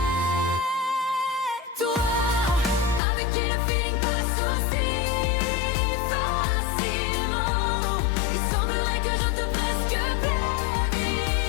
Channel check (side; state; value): right; drops out; at 3.0 s